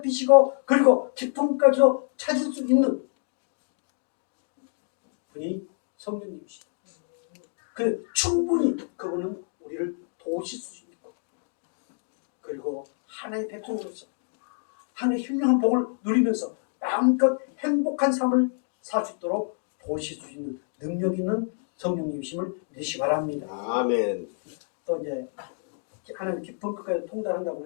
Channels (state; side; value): silent; right; 60 dB below the other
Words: 그리고 깊은 것까지도 찾을 수 있는 분이 성령님이시다. 그 충분히 그분은 우리를 도우실 수 있고 그리고 하나님의 백성으로서 하나님의 훌륭한 복을 누리면서 마음껏 행복한 삶을 살 수 있도록 도우실 수 있는 능력 있는 성령님이심을 믿으시기 바랍니다. 아멘. 또 이제 하나님 깊은 것까지 통달한다고